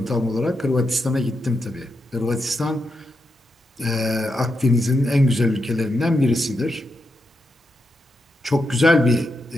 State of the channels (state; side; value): normal; both; correlation 0.85